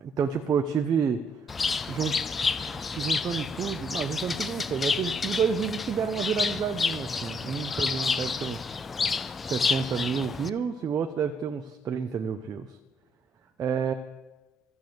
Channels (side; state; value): both; normal; correlation 0.71